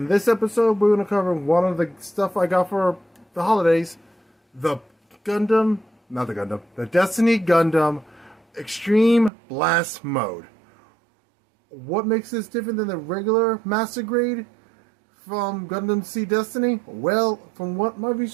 this episode, we're going to cover one of the stuff I got for the holidays. The Destiny Gundam Extreme Blast Mode. What makes this different than the regular Master Grade from Gundam Seed Destiny? Well, from what my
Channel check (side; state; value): left; drops out; at 9.3 s